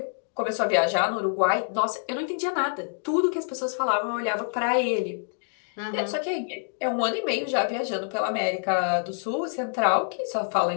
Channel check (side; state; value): right; silent; digital silence